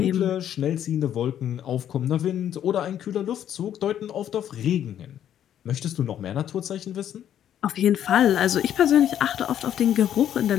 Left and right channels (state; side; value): quieter; right; 10.4 dB